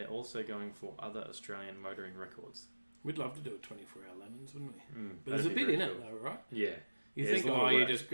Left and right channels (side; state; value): both; inverted; correlation -1.00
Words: also going for other Australian motoring records. We'd love to do a 24-hour lemons, wouldn't we? But there's a bit in it, though, right? Yeah. You think, you just